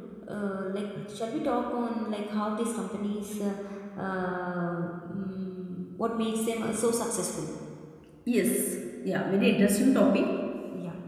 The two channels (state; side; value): identical; both; correlation 1.00